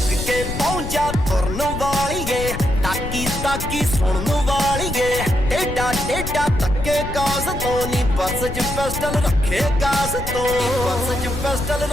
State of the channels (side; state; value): left; noise; rumble, 6 dB below the sound